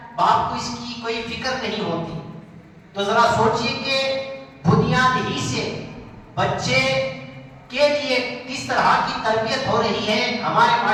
باپ کو اس کی کوئی فکر نہیں ہوتی، تو ذرا سوچئے کہ بنیاد ہی سے بچے کے لیے کس طرح کی تربیت ہو رہی ہے ہمارے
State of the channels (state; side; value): identical; both; correlation 1.00